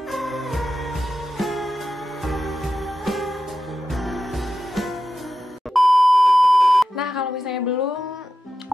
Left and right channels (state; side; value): normal; both; correlation 0.91